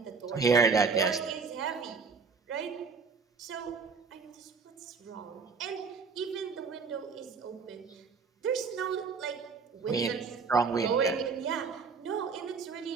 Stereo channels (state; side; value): quieter; left; 5.1 dB